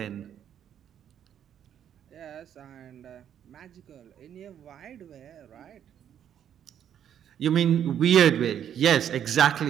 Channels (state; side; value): quieter; left; 9.5 dB